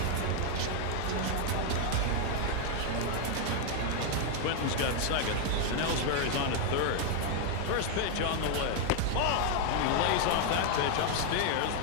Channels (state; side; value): different; both; correlation 0.00